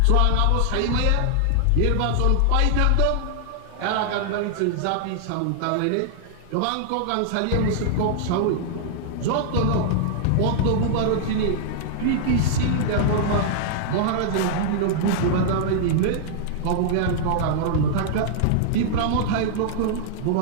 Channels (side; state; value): both; different; correlation -0.01